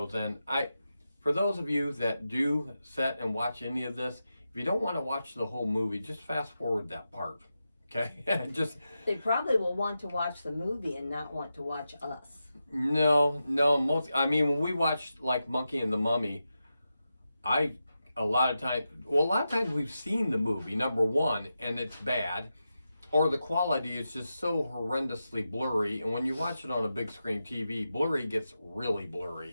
And for those of you that do sit and watch any of this, if you don't want to watch the whole movie, just fast forward that part, okay? They probably will want to watch the movie and not want to watch us. No, when we watched like Monkey and the Mummy, a lot of times we've seen the movie, number 1, and it's bad, or the quality is just so horrendously blurry, and when you watch it on a big screen TV, blurry gets really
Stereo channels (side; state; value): both; inverted; correlation -0.90